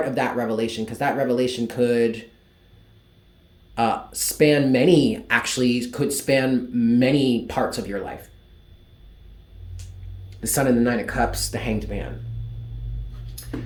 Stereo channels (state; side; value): identical; both; correlation 1.00